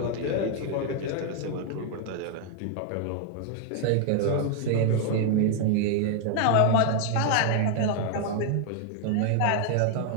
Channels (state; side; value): different; both; correlation 0.00